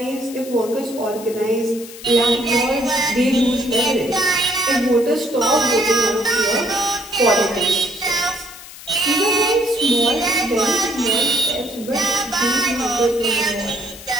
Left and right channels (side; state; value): left; noise; hiss, 16 dB below the sound